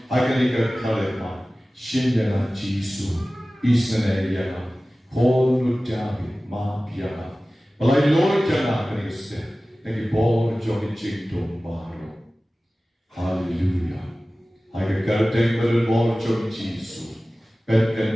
Akani ka kalema. Shin yana jisu. Israel yana. Kol nutabi ma yana. Balay Lord yana kami step. Nagi bor jogi chingtong baro. Hallelujah. Aga karteng berbor jom Jisu.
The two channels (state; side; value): normal; both; correlation 0.97